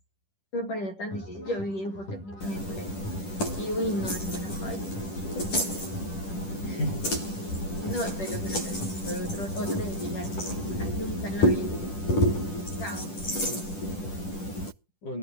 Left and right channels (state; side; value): late; right; 10 ms